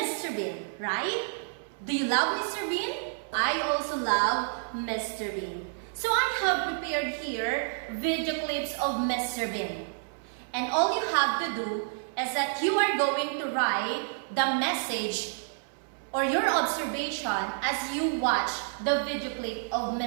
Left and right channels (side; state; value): left; silent; 58 dB below the other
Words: Bean, right? Do you love Mr. Bean? I also love Mr. Bean. So I have prepared here video clips of Mr. Bean. And all you have to do is that you are going to write the message or your observation as you watch the video clip of